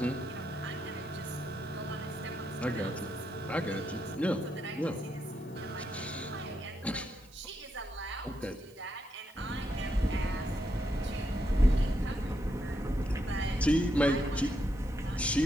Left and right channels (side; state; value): right; noise; hiss, 27 dB below the sound